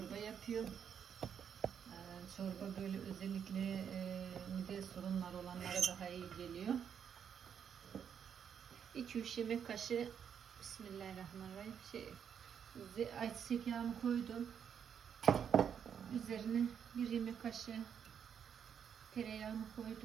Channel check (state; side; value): quieter; left; 8.0 dB